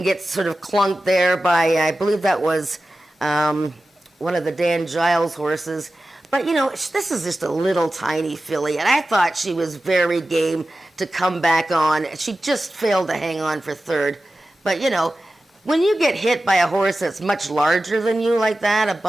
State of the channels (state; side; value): normal; both; correlation 0.95